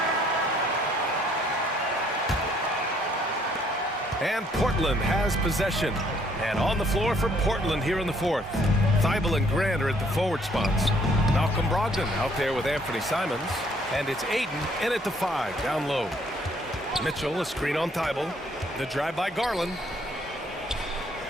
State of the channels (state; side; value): normal; both; correlation 0.64